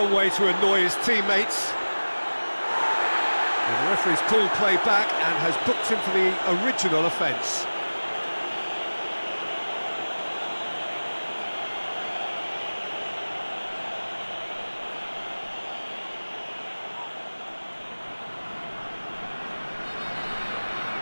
way to annoy his teammates. And the referee's pulled play back and has booked him for the original offence.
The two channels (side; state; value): both; inverted; correlation -1.00